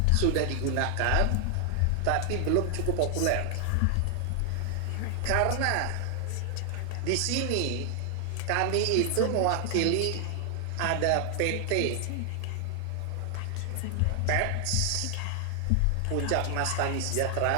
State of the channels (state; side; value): different; both; correlation 0.00